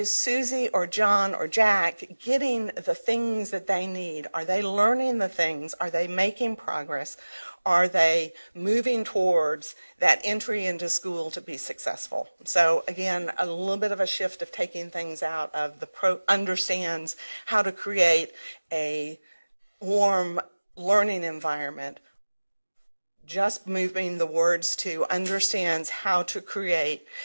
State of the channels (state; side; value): inverted; both; correlation -1.00